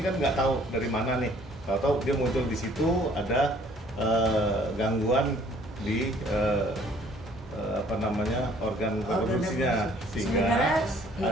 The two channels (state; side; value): normal; both; correlation 0.58